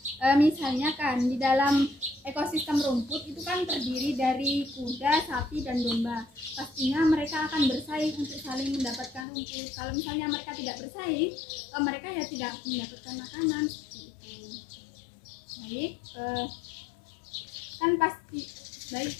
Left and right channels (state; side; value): drops out; right; at 9.2 s